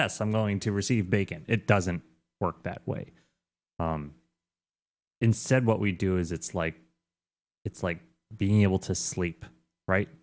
I'm going to receive bacon. It doesn't work that way. Um, Instead, what we do is it's like being able to sleep, right?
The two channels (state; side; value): identical; both; correlation 1.00